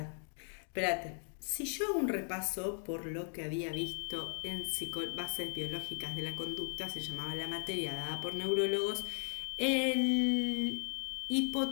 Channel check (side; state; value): right; silent; 53 dB below the other